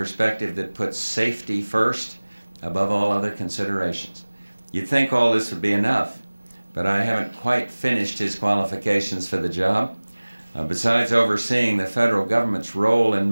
that puts safety first above all other considerations. You'd think all this would be enough, but I haven't quite finished his qualifications for the job. Besides overseeing the federal government's role in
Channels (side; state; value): both; inverted; correlation -1.00